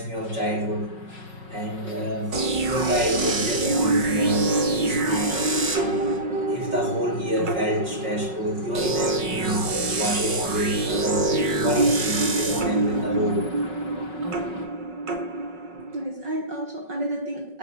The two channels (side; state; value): left; late; 5.4 ms